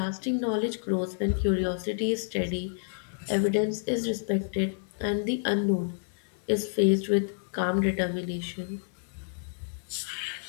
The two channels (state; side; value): silent; right; digital silence